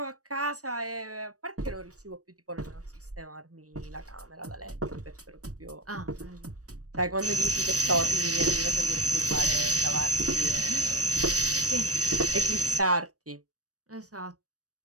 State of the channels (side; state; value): left; late; 0.66 ms